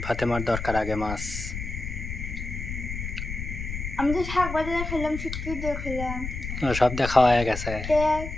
ফাতেমার দরকার আগে মাছ। আমি তো শাক বাজারে খেলাম, শুটকি দিয়ে খেলাম, সব দেখা হয়ে গেছে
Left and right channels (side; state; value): left; noise; rumble, 6 dB below the sound